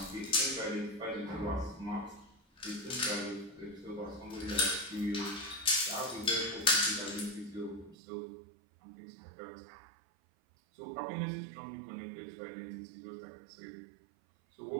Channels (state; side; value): drops out; left; at 8.0 s